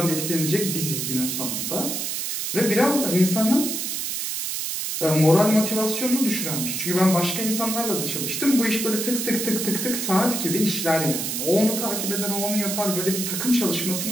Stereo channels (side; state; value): right; noise; hiss, 2 dB below the sound